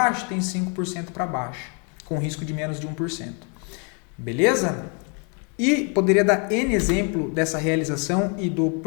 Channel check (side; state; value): right; quieter; 37.1 dB